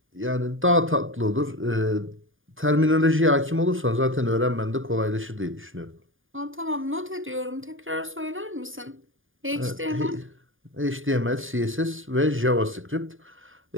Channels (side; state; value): left; late; 0.58 ms